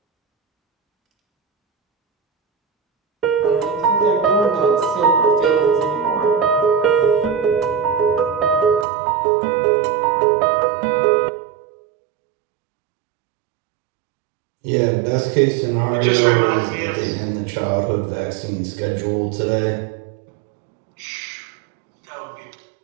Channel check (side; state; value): left; drops out; at 8.8 s